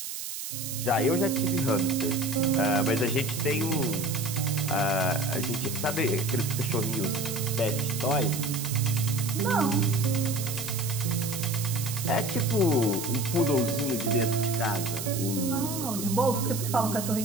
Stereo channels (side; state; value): right; noise; hiss, 7 dB below the sound